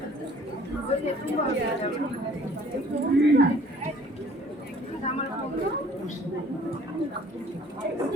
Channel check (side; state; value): both; normal; correlation 0.55